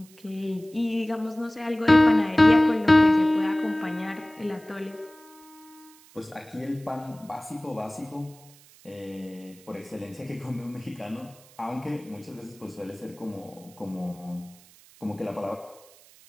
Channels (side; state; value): right; noise; hiss, 25 dB below the sound